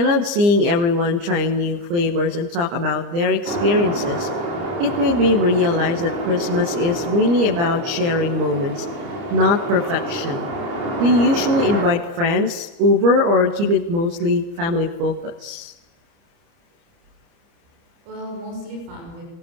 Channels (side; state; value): left; late; 29 ms